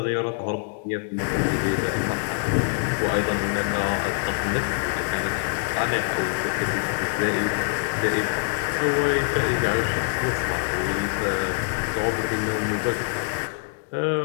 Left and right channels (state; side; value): silent; right; 62 dB below the other